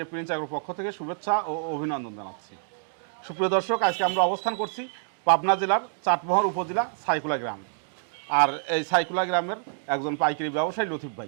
প্রিন্স অ্যাগ্রোর পক্ষ থেকে শুভেচ্ছা ও অভিনন্দন জানাচ্ছি। সুপ্রিয় দর্শক, আজকে আমরা অবস্থান করছি পাবনা জেলার চাটমোহর উপজেলা সাইকুলা গ্রাম। আর এই সাইকুলা গ্রামের একজন পাইকারি ব্যবসায়ী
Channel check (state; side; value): silent; left; digital silence